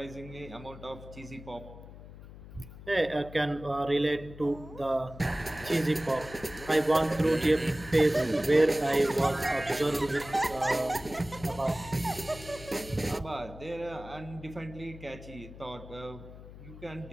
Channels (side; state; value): left; noise; hum, 16 dB below the sound